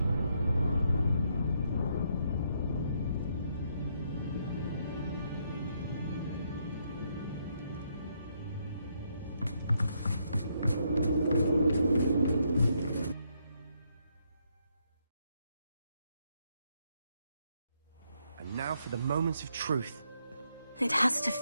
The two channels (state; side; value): inverted; both; correlation -0.76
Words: Now for the moment of truth. It has to